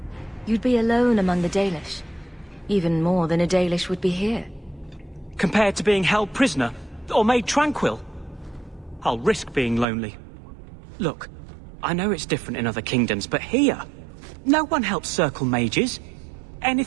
You'd be alone among the Dalish. Even more than a Dalish would be here. Compared to being held prisoner, or made tranquil, I'll risk being lonely. Look, I know it's different in other kingdoms, but here, no one helps circle mages.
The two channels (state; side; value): drops out; left; at 9.9 s